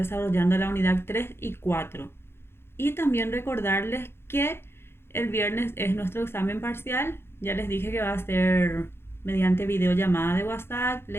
la unidad 3 y 4. Y también recordarles que el viernes es nuestro examen parcial. Ya les dije que va a ser mediante videollamada de WhatsApp.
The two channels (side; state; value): right; late; 0.12 ms